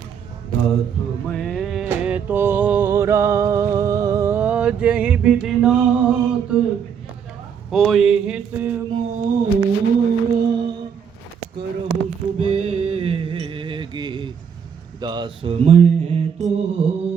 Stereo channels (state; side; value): quieter; left; 7.4 dB